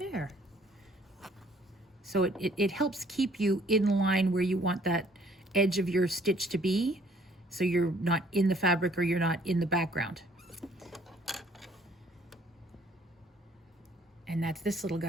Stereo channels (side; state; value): both; normal; correlation 0.60